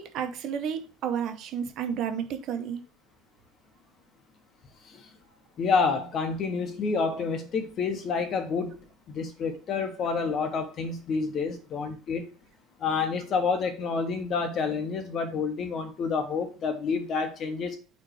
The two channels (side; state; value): right; quieter; 3.3 dB